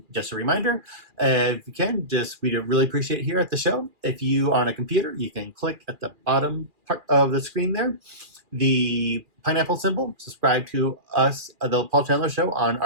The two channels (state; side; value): late; left; 2.4 ms